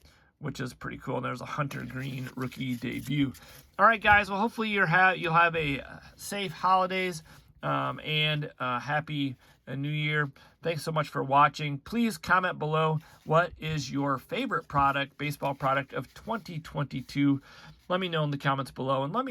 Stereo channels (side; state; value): both; identical; correlation 1.00